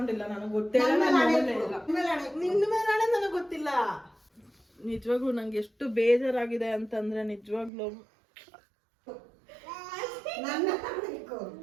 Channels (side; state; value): left; drops out; at 7.7 s